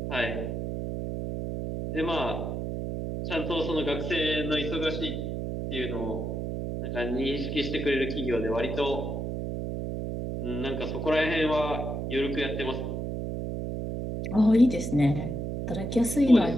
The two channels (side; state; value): right; noise; hum, 3 dB below the sound